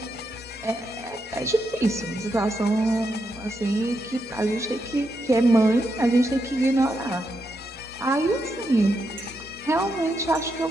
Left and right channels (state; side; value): normal; both; correlation 0.83